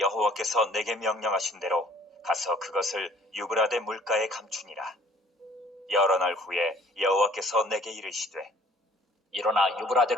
내게 명령하신 대로 가서 그것을 유브라데 물가에 감추니라. 여러 날 후에 여호와께서 내게 이르시되 일어나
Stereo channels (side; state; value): both; normal; correlation 0.54